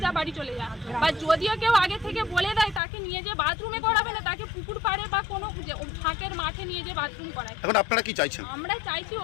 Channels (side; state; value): right; drops out; at 2.8 s